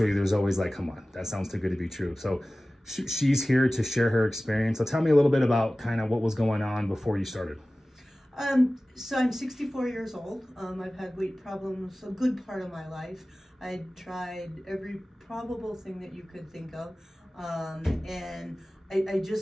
there's always like, come on, that sounds too good to be true. So she's here to share her experience. So tell me a little bit about kind of what was going on before you started. So I'm 64 years old. I've had weight problems a good part of my life. I tried every probable thing that you could think of, and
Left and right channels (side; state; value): both; normal; correlation 0.97